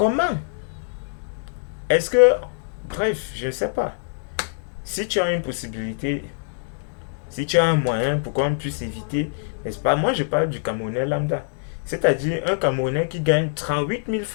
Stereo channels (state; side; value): silent; right; digital silence